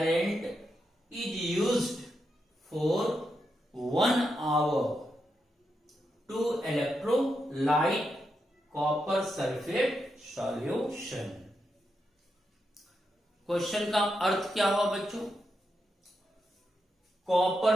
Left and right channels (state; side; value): normal; both; correlation 0.84